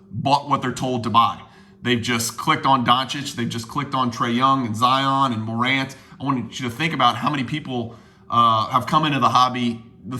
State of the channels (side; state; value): both; identical; correlation 1.00